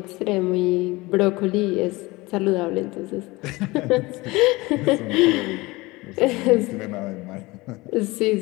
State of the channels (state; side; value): quieter; right; 22.0 dB